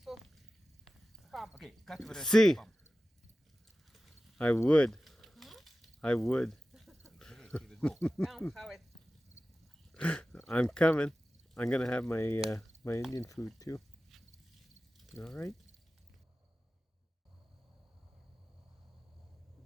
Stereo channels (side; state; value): both; normal; correlation 0.95